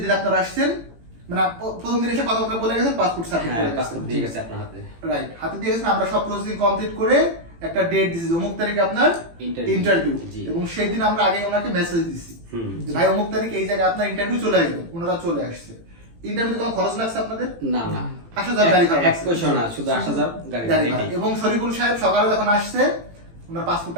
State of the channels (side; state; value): left; late; 18 ms